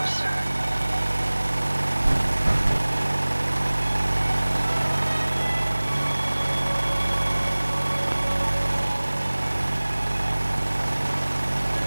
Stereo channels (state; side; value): inverted; both; correlation -1.00